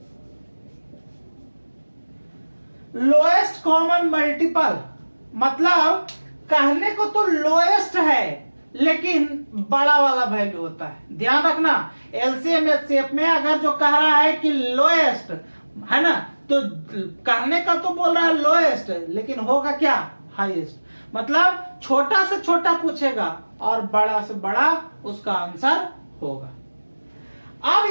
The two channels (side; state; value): both; inverted; correlation -1.00